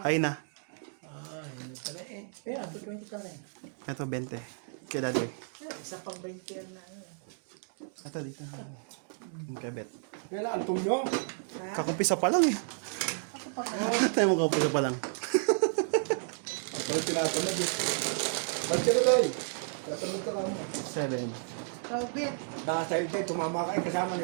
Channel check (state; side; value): silent; left; digital silence